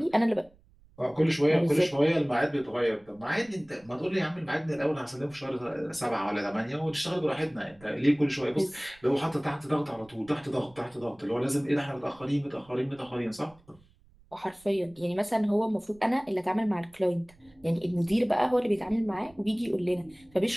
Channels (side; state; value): right; noise; rumble, 29 dB below the sound